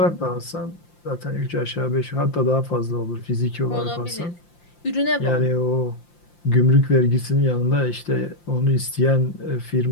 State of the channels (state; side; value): late; right; 5.8 ms